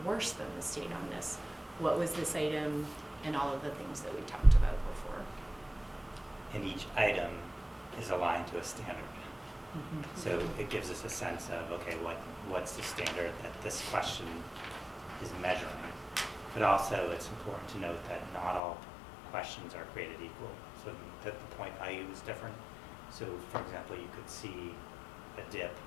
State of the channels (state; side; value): drops out; right; at 18.6 s